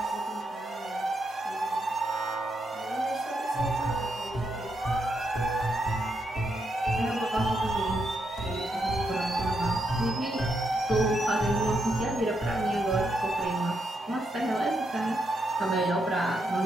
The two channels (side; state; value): both; normal; correlation 0.81